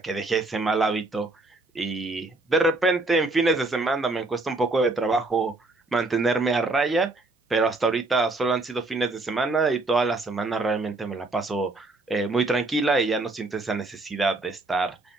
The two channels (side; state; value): left; quieter; 3.2 dB